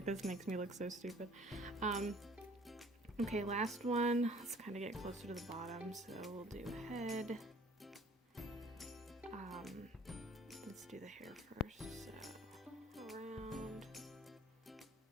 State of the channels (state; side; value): normal; both; correlation 0.54